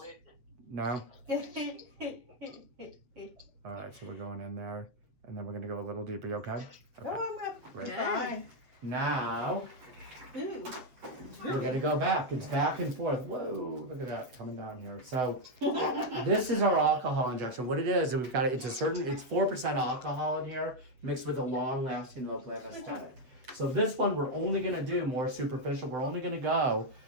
No? Alright, so we're going in there and then we're gonna go a little deeper. You okay? No, Okay. I'm not. Right. Fine. Now Ooh. we're gonna go back. It's back and forth. Whoa, look at that coming down here. So this is our alcohol injection. What it is, we've got it's 4% alcohol in here mixed with a long-lasting local anesthetic. So this one we're only gonna do more superficial. We're only gonna go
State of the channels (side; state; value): left; late; 8.0 ms